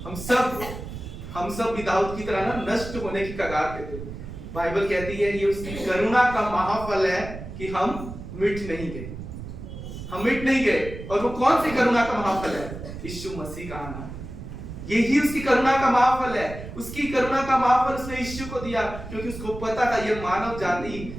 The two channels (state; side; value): noise; right; rumble, 10 dB below the sound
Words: हम सब भी दाऊद की तरह ना नष्ट होने की कगार पे थे। बाइबल कहती है ये उसकी करुणा का महाफल है कि हम मिट नहीं गए, हम मिट नहीं गए। और वो कौन सी करुणा का महाफल है? यीशु मसीह का आना। यही उसकी करुणा का महाफल है। उसकी करुणा का महाफल उसने यीशु को दिया, क्योंकि उसको पता था ये मानव